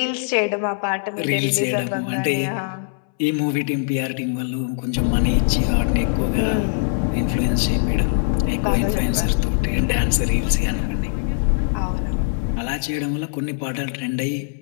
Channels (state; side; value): silent; right; 64 dB below the other